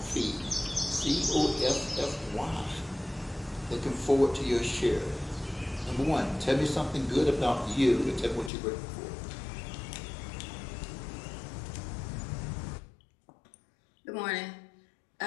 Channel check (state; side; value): drops out; right; at 8.5 s